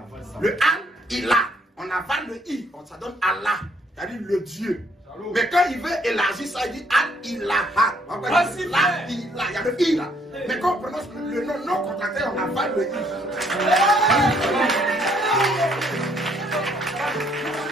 Le Al-Ilah, on avale le I, ça donne Allah, c'est-à-dire le Dieu. Mais quand il veut élargir ça, il dit Al-Ilaha. Il y a le I là. Mais quand on prononce le nom non contracté, on avale le I.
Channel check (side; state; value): both; normal; correlation 0.67